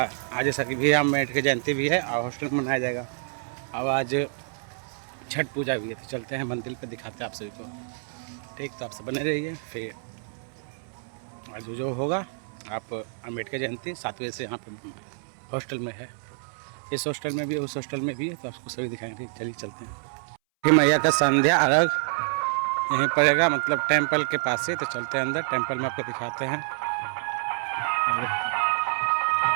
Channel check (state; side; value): silent; left; 60 dB below the other